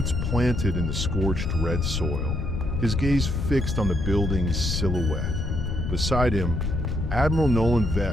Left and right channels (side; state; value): left; noise; rumble, 1 dB below the sound